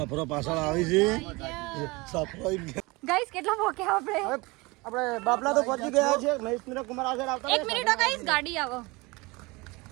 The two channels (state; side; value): quieter; left; 24.4 dB